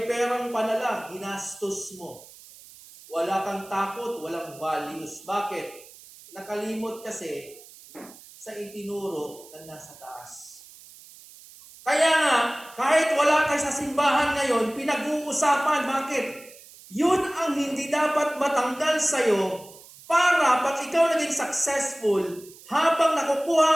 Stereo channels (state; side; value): noise; right; hiss, 21 dB below the sound